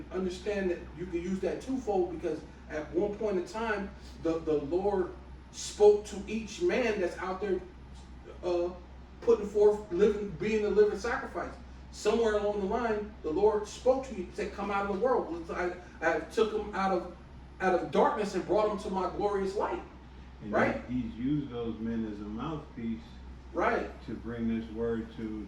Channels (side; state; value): both; identical; correlation 1.00